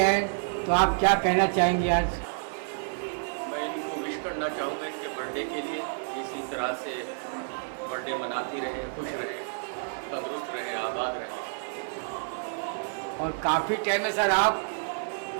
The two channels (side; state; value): left; silent; 59 dB below the other